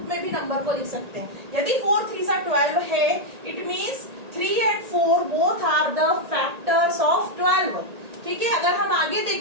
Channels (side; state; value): left; late; 1.8 ms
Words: में भी नंबर को लिख सकते हैं। यदि 4 3 12 है, it means 3 and 4 both are the factors of 12, ठीक है। अगर हम आगे